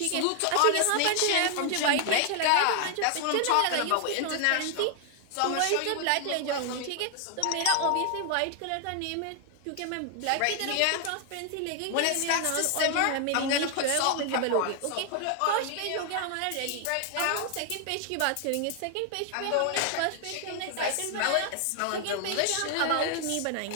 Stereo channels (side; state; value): both; different; correlation 0.00